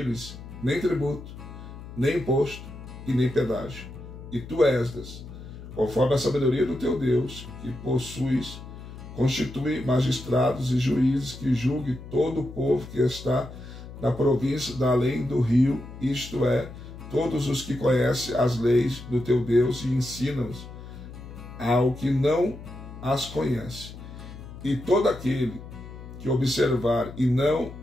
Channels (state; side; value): noise; left; hum, 13 dB below the sound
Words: nem tributo, nem imposto e nem pedágio. E tu, Esdras, conforme a sabedoria do teu Deus, que possuis, constitui magistrados e juízes que julguem todo o povo que está na província da além do rio, isto é, todos os que conhecem as leis do teu Deus e ensinam-os ao que não as conhece. E todo aquele que observar e